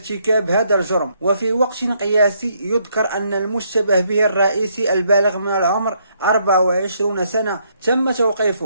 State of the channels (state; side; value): inverted; both; correlation -0.72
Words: هذا الجرم. وفي وقت قياسي يذكر أن المشتبه به الرئيسي البالغ من العمر 24 سنة تم